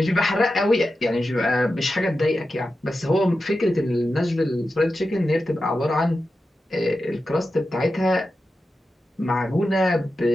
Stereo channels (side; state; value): both; normal; correlation 0.91